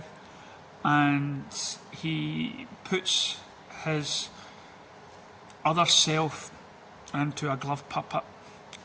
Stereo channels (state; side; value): identical; both; correlation 1.00